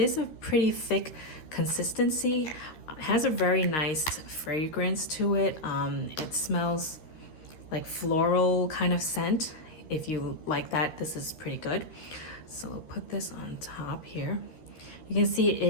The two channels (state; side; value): late; right; 13 ms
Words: a pretty thick consistency. It has a very nice fragrance to it. It smells like floral kind of scent. If you like that, this is pretty good. So I'll put this on top here. You can see